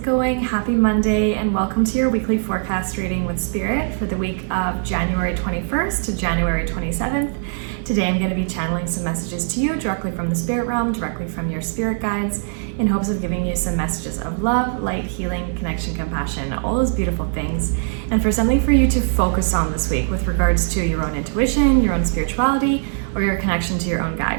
going? Happy Monday and welcome to your weekly forecast reading with Spirit for the week of January 21st to January 27th. Today I'm going to be channeling some messages to you directly from the spirit realm, directly from your spirit guides, in hopes of giving you some messages of love, light, healing, connection, compassion, all those beautiful things, and for something for you to focus on this week with regards to your own intuition, your own spirituality, or your connection to your own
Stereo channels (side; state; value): left; silent; digital silence